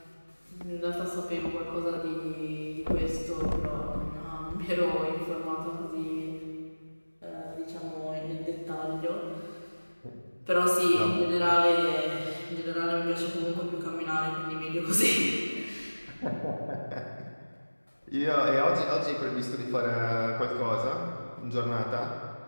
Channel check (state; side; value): inverted; both; correlation -1.00